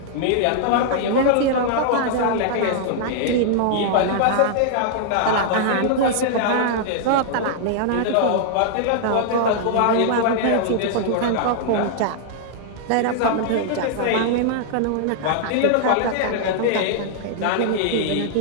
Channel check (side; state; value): both; different; correlation -0.01